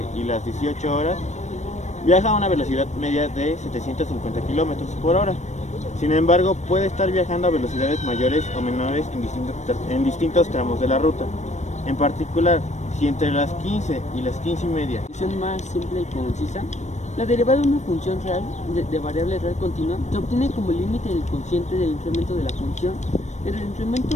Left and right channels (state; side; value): late; right; 0.34 ms